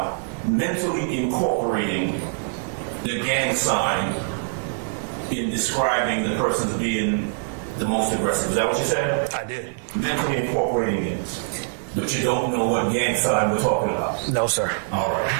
mentally incorporating the gang sign in describing the person as being the most aggressive. Is that what you said? I did. Mentally incorporating it. But you don't know what gang sign we're talking about. No, sir. All right.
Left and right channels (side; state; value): left; silent; 63 dB below the other